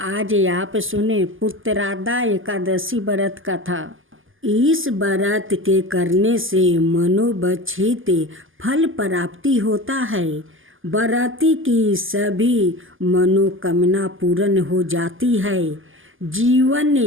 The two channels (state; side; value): late; left; 0.58 ms